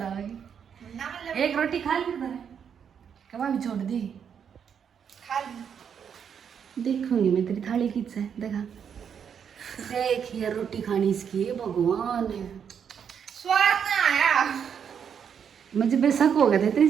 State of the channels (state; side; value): quieter; left; 7.6 dB